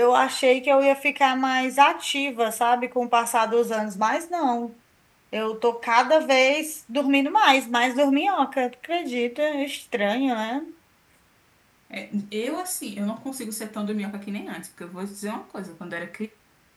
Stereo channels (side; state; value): both; identical; correlation 1.00